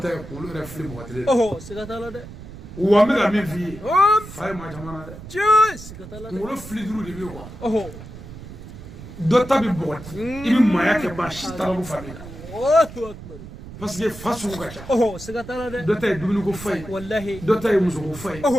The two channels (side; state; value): right; noise; rumble, 14 dB below the sound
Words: tɛ kunkolo yɛrɛ fili mɔgɔ kelen Oh. Sikatala de. wa n bɛ ka min f'i ye Hop. fa ye maa caman na dɛ Cheers. Sikatala de. kunkolo fili duuru de bɛ yen quoi Oh. dɔ ta bɛ bɔgɔti i bɛ maaya kɛ maa si t'a la ko fa b'i la Allahu akbar. parce que fa sugu ka ca Oh. Sikatala de. dɔ ta ye dumuni ko fa ye Wallahi. dɔ ta ye muso ko fa ye